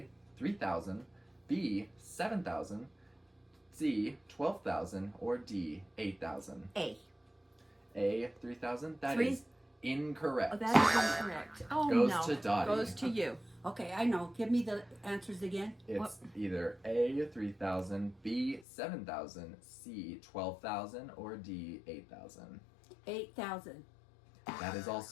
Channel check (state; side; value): drops out; right; at 18.7 s